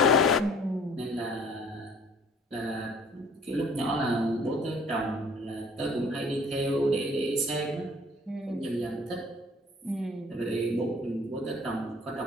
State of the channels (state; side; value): normal; both; correlation 0.54